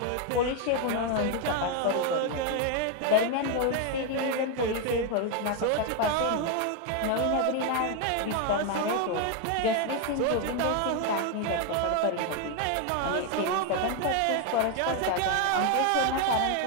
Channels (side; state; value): both; different; correlation 0.01